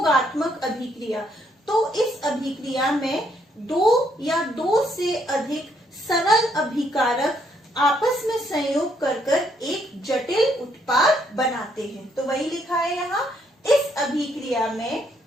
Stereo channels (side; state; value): both; normal; correlation 0.71